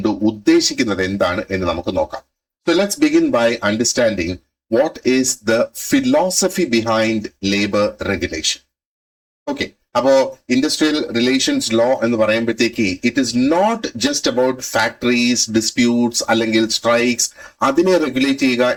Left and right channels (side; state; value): both; identical; correlation 1.00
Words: ഉദ്ദേശിക്കുന്നത് എന്താണ് എന്ന് നമുക്ക് നോക്കാം. So let's begin by understanding what is the philosophy behind labour regulation. Okay, അപ്പോ ഇൻഡസ്ട്രിയൽ റിലേഷൻസ് ലോ എന്ന് പറയുമ്പോഴത്തേക്ക് it is not just about factories, disputes അല്ലെങ്കിൽ സ്ട്രൈക്സ്, അതിനെ റെഗുലേറ്റ് ചെയ്യുക